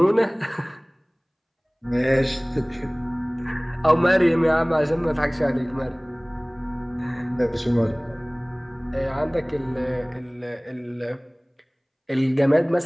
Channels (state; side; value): identical; both; correlation 1.00